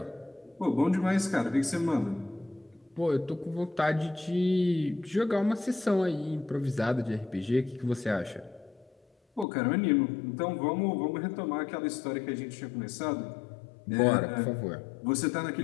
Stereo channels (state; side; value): drops out; right; at 9.5 s